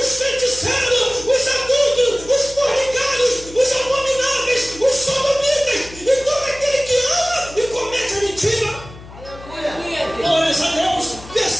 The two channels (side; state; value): left; noise; hum, 17 dB below the sound